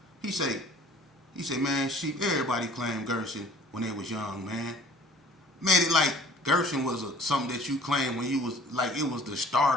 He say, man, sheep, everybody claimed Gerson when they was young, man. Made it like Gerson was something that you claimed when you was, like it was the start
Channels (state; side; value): normal; both; correlation 0.51